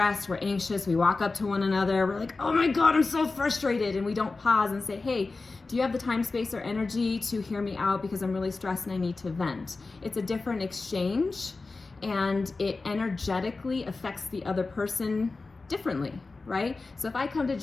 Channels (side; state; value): right; quieter; 3.7 dB